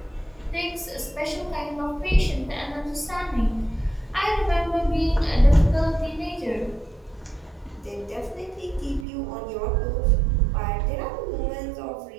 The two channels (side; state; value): left; drops out; at 9.1 s